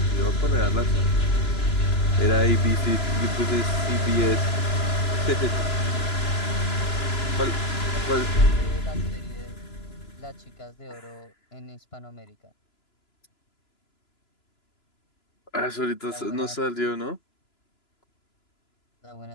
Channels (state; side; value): late; right; 3.0 ms